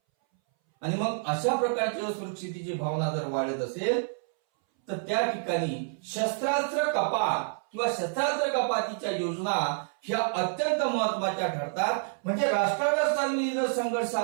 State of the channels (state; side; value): silent; left; 59 dB below the other